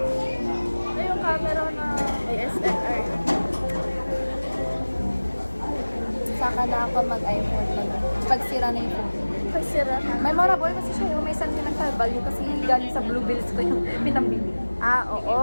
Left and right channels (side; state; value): both; inverted; correlation -1.00